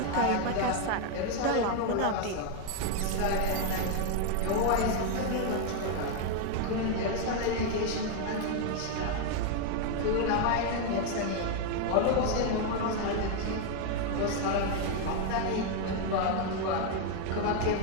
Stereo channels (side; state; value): both; different; correlation 0.01